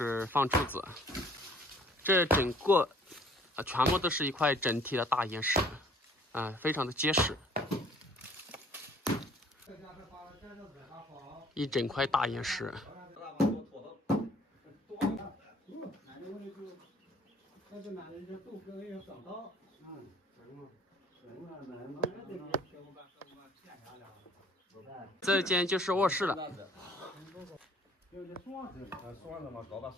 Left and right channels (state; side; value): normal; both; correlation 0.56